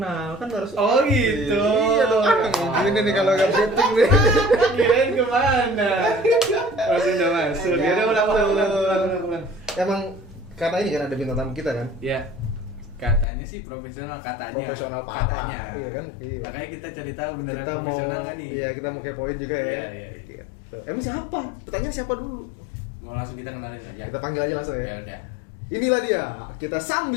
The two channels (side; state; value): right; drops out; at 13.2 s